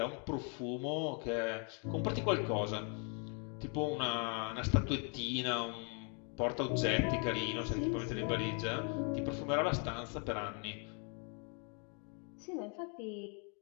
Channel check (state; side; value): quieter; right; 38.5 dB